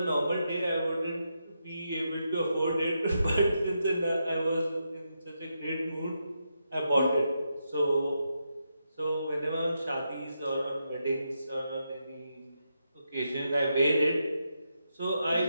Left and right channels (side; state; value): both; inverted; correlation -0.84